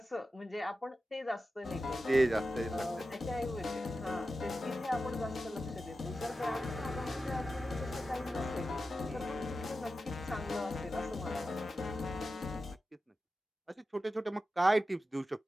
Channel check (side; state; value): both; normal; correlation 0.92